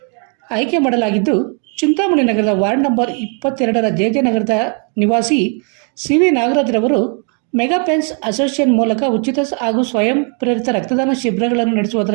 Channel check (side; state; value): left; quieter; 38.1 dB